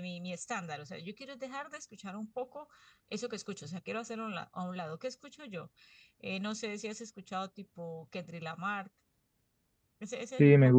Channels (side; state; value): both; identical; correlation 1.00